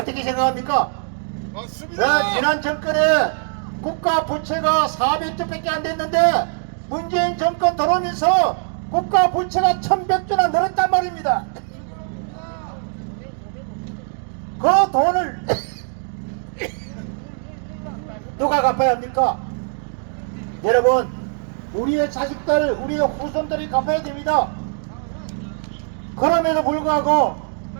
생각합니까? 지난 정권에 국가 부채가 400조밖에 안 됐는데 문재인 정권 들어오면서 국가 부채가 1100조나 늘었단 말입니다. 그 돈을 누가 갚아야 합니까? 여러분, 우리의 자식들, 우리의 후손들이 갚아야 됩니다. 그럼에도 불구하고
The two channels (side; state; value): left; silent; 62 dB below the other